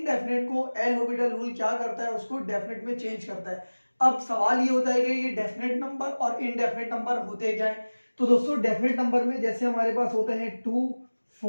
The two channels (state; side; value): inverted; both; correlation -1.00